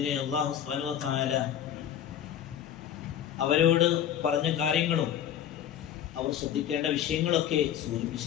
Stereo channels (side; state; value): right; quieter; 10.1 dB